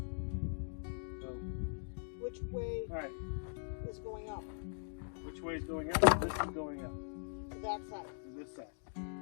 So. Which way Alright. is going up? Which way is going up? This is going up. To that side. To this side.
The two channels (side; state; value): right; silent; digital silence